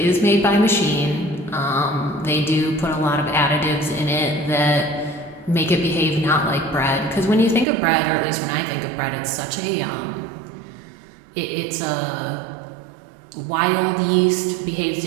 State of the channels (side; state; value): left; drops out; at 7.7 s